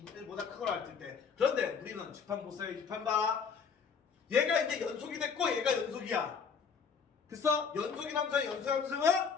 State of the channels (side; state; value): right; quieter; 6.1 dB